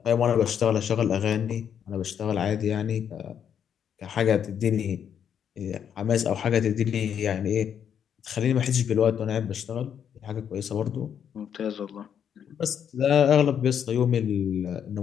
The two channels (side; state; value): right; quieter; 8.5 dB